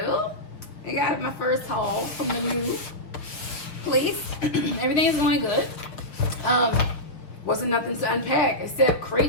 I got my first haul from the new place. Everything is going good. Wasn't nothing to unpack except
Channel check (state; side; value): late; right; 6.4 ms